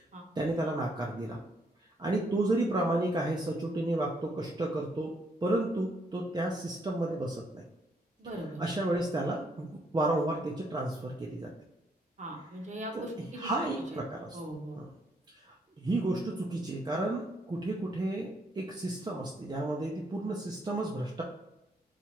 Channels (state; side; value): normal; both; correlation 0.72